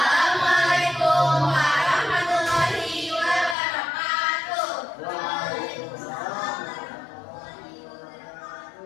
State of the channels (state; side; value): drops out; right; at 3.6 s